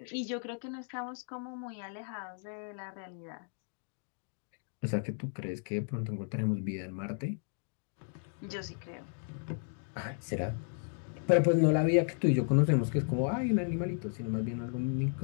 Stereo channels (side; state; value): right; silent; 55 dB below the other